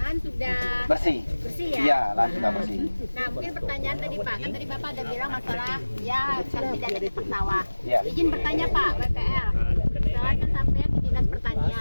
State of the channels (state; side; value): inverted; both; correlation -1.00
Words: sudah Bersih ya? Iya, lahan sudah bersih. Nah mungkin pertanyaan tadi Pak, kan tadi Bapak ada bilang masalah ya kan tidak ada cetak sawah. Iya. Izin bertanya Pak, BPR. Saya kan sampai di Dinas